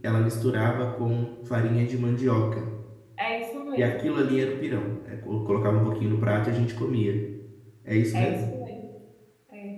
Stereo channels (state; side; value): identical; both; correlation 1.00